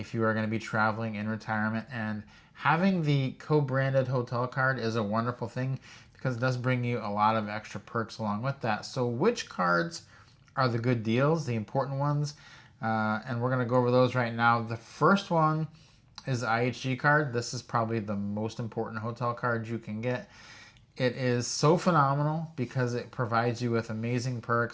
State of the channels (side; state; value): both; identical; correlation 1.00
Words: you are going to be traveling in retirement. And having the co-branded hotel card is a wonderful thing because it does bring you a lot of extra perks along with that. So which cards are the good deals, the important ones? And we're going to go over those right now. The first one is the IHG card. This is probably the most important hotel card you can get. It is so phenomenal because it provides you with amazing